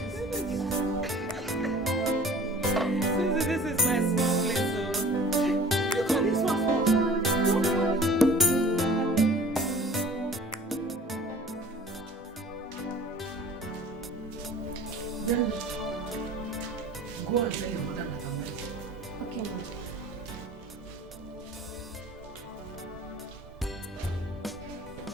This is my small place, so you call this one small? Then go and tell your mother that I'm ready. Okay, ma'am.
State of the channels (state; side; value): normal; both; correlation 0.46